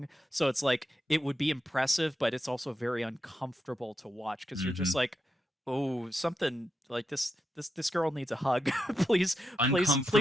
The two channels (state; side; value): normal; both; correlation 0.86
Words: So it's like it would be impressive, but it's also very uncomfortable to watch because you're just mhm. like, oh, something like this girl needs a hug. Please